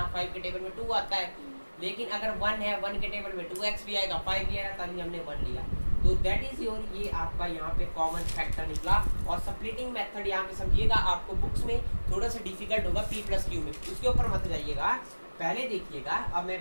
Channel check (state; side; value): inverted; both; correlation -1.00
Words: 5 के टेबल में 2 आता है, लेकिन अगर 1 है, 1 के टेबल में 2x भी आएगा, 5 भी आएगा, तभी हमने 1 लिया। तो दैट इज योर, ये आपका यहाँ पे कॉमन फैक्टर निकला। और स्प्लिटिंग मेथड यहाँ पे समझिएगा, आपको बुक्स में थोड़ा सा डिफिकल्ट होगा P + Q में, उसके ऊपर मत जाइएगा। पहले देखिएगा, अब